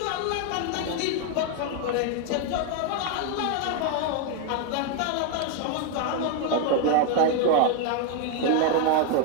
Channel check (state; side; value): different; both; correlation 0.01